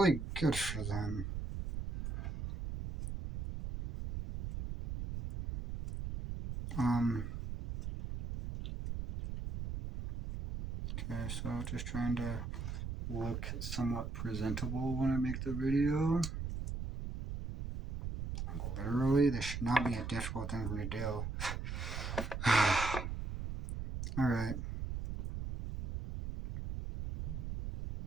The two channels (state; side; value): noise; right; rumble, 5 dB below the sound